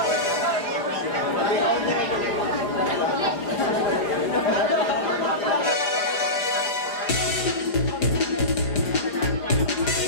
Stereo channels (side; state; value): right; late; 4.9 ms